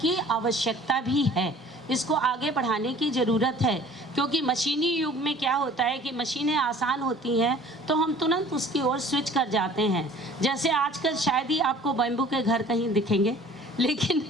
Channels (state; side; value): normal; both; correlation 0.49